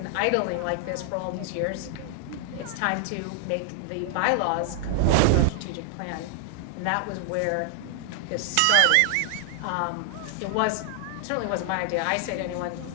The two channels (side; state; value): both; different; correlation 0.00